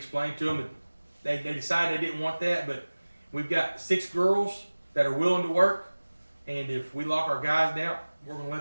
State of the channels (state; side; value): inverted; both; correlation -1.00